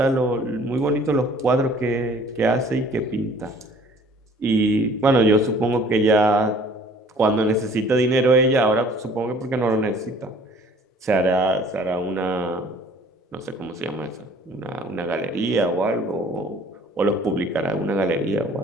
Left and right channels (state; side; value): normal; both; correlation 0.53